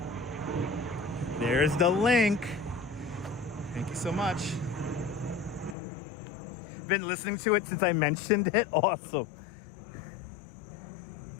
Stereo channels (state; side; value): drops out; right; at 5.8 s